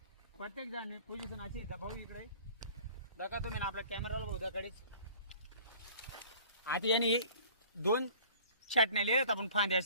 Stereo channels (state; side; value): inverted; both; correlation -0.49